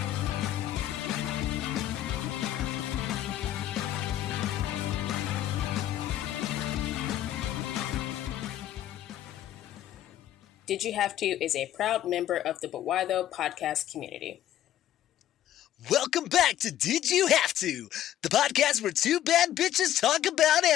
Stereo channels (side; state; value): right; quieter; 12.3 dB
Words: Did You Have To is a proud member of the Buwaido podcast community. Welcome back to Did You Have To, the podcast where two bad bitches talk about